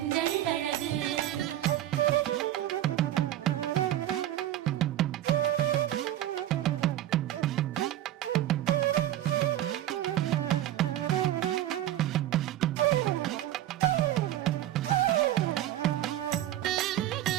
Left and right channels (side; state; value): left; quieter; 13.2 dB